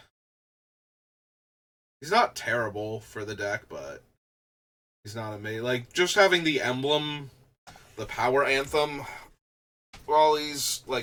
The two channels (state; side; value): identical; both; correlation 1.00